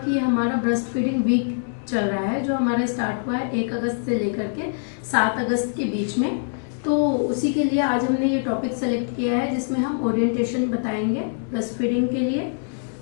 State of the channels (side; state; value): right; silent; digital silence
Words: ये हमारा ब्रेस्ट फीडिंग वीक चल रहा है, जो हमारा स्टार्ट हुआ है 1 अगस्त से लेकर के 7 अगस्त के बीच में। तो उसी के लिए आज हमने ये टॉपिक सेलेक्ट किया है जिसमें हम ओरिएंटेशन बताएंगे ब्रेस्ट फीडिंग के लिए।